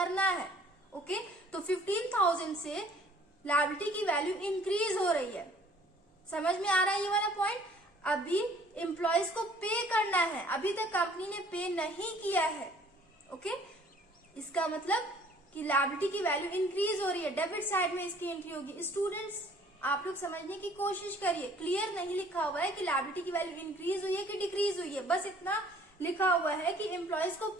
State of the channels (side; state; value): both; normal; correlation 0.55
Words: है। ओके, तो 15,000 से लायबिलिटी की वैल्यू इंक्रीज हो रही है। समझ में आ रहा है ये वाला पॉइंट? अभी एम्प्लॉयज को पे करना है, अभी तक कंपनी ने पे नहीं किया है। ओके, इसका मतलब कि लायबिलिटी की वैल्यू इंक्रीज हो रही है, डेबिट साइड में इसकी एंट्री होगी। स्टूडेंट्स आप लोग समझने की कोशिश करिए, क्लियर नहीं लिखा हुआ है कि लायबिलिटी की वैल्यू इंक्रीज हुई है कि डिक्रीज हुई है, बस इतना लिखा हुआ है कि एम्प्लॉयज को